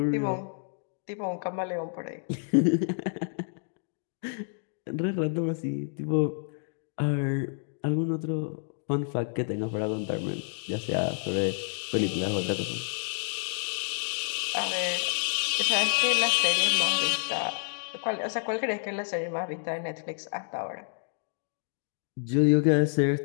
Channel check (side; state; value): right; silent; digital silence